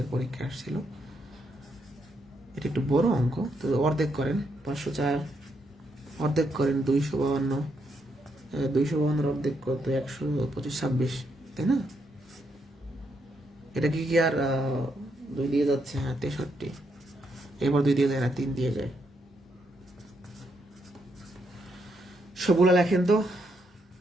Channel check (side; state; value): both; normal; correlation 0.78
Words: পরীক্ষা আসছিল। এটা একটু বড় অঙ্ক, তো অর্ধেক করেন 504, অর্ধেক করেন 252, 252-এর অর্ধেক কত, 125, 26, তাই না? এটা কি আর 2 দিয়ে যাচ্ছে, হ্যাঁ 63, এবার 2 দিয়ে যায় না, 3 দিয়ে যায়। সবগুলো লেখেন তো।